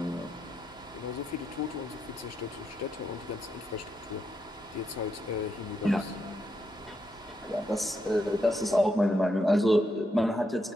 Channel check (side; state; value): both; normal; correlation 0.81